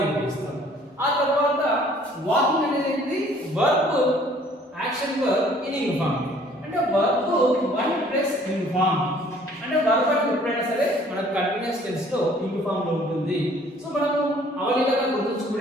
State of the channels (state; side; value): normal; both; correlation 0.56